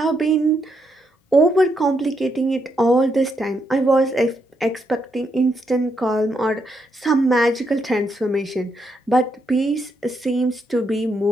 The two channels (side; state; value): both; normal; correlation 0.79